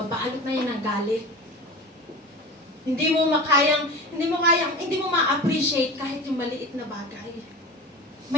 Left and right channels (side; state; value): both; normal; correlation 0.33